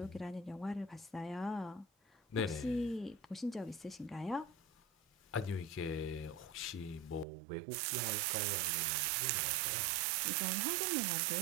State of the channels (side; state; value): left; drops out; at 7.2 s